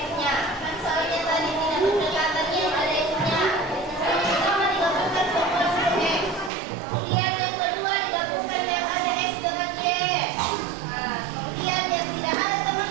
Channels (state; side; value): drops out; left; at 6.5 s